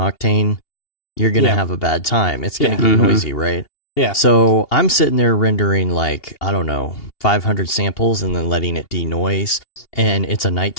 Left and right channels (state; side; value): late; right; 2.8 ms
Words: you're going to have a bad time. It's going to get noisy, right? Yeah. So I'm sitting there rendering 500 samples and then letting it denoise, and it's a